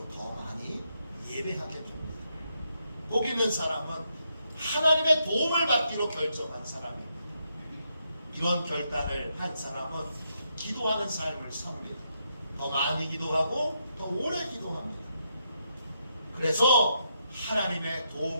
더 많이 예배하게 됩니다. 복 있는 사람은 하나님의 도움을 받기로 결정한 사람입니다. 이런 결단을 한 사람은 기도하는 삶을 삽니다. 더 많이 기도하고 더 오래 기도합니다. 그래서 하나님의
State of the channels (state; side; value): inverted; both; correlation -0.80